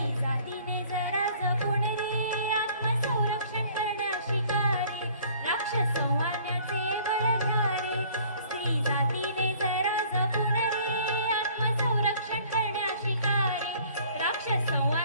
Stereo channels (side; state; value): both; inverted; correlation -0.54